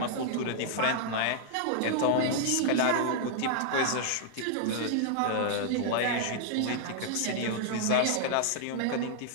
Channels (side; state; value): both; different; correlation -0.01